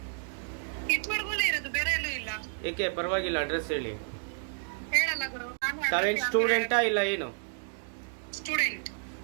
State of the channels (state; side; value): silent; left; digital silence